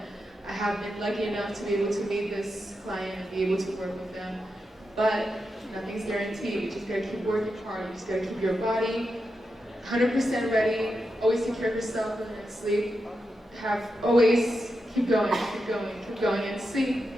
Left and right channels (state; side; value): normal; both; correlation 0.87